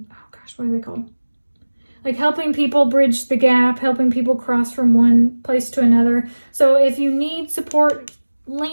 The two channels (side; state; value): both; inverted; correlation -1.00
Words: gosh, what are they called? Like helping people bridge the gap, helping people cross from one place to another. So if you need support,